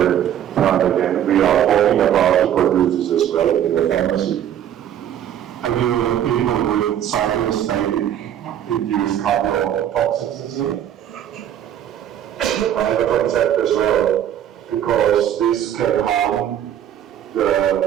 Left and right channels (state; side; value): quieter; left; 10.4 dB